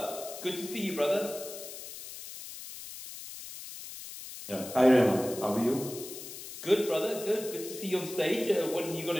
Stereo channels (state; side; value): noise; left; hiss, 11 dB below the sound